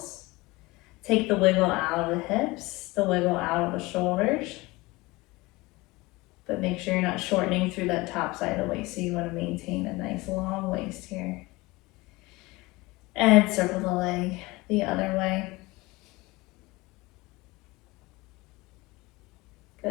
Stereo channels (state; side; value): quieter; right; 22.1 dB